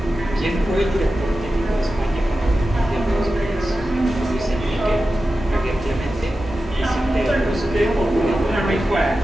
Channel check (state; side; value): normal; both; correlation 0.93